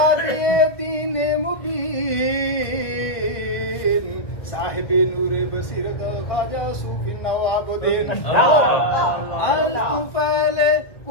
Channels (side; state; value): right; late; 1.5 ms